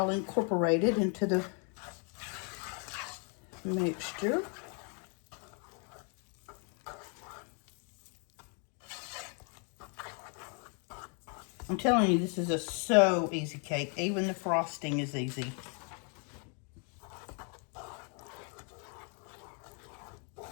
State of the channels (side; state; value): right; quieter; 38.2 dB